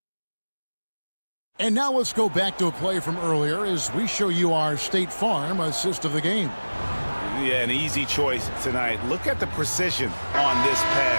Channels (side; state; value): both; inverted; correlation -1.00